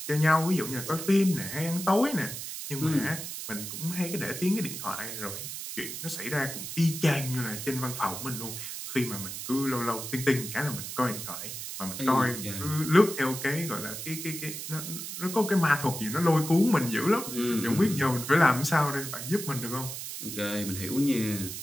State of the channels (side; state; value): right; noise; hiss, 7 dB below the sound